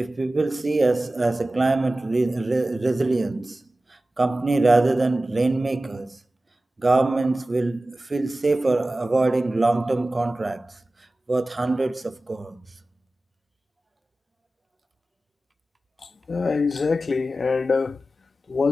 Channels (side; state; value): both; normal; correlation 0.96